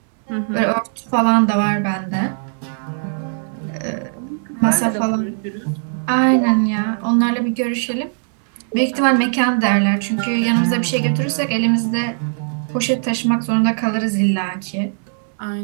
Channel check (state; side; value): silent; left; digital silence